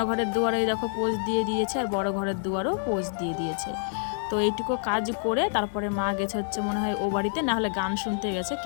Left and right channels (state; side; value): silent; right; digital silence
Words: দুয়ারে দেখো পোজ দিয়ে দিয়েছে, আর বড় ঘরের দুয়ারও পোজ দিয়ে দিয়েছে। তো এইটুকু কাজ করে তারপরে মা গেছে হচ্ছে মনে হয় ও বাড়িতে, না হলে গান শুনতে গেছে